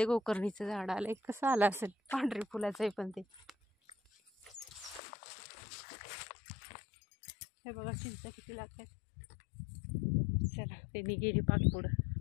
गोकर्णीचं झाड आलंय. कसं आलं असेल, पांढरी फुलाचं आहे पण ते. हे बघा चिंच किती लागतात. चला त्यांनी गेली पाक पुढं,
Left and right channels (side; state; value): right; drops out; at 5.0 s